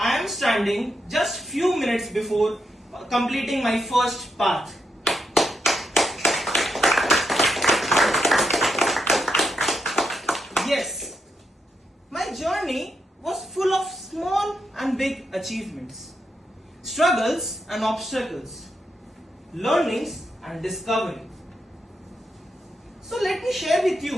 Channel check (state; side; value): normal; both; correlation 0.81